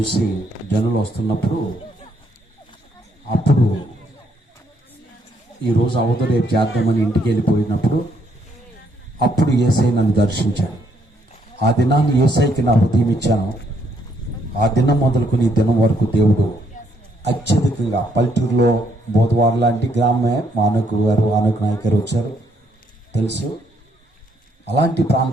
జనులు వస్తున్నప్పుడు అప్పుడు ఈరోజు అవత రేపు చేద్దామని ఇంటికి వెళ్ళిపోయినప్పుడు అప్పుడు యేసై నన్ను దర్శించాను. ఆ దినాన్ని యేసైకి నా హృదయం ఇచ్చాను. ఆ దినం మొదలుకొని ఈ దినం వరకు దేవుడు అత్యధికంగా పల్లెటూరులో బోధవారు లాంటి గ్రామమే మా ఆనకు నాయక్ గారు వచ్చారు తెలుసు. అలాంటి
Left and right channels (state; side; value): normal; both; correlation 0.72